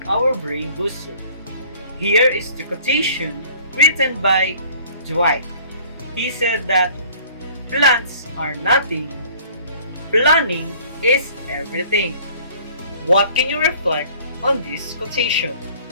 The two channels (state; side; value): inverted; both; correlation -0.52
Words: our brain booster. Here is the quotation written by Dwight. He said that plans are nothing, planning is everything. What can you reflect on this quotation?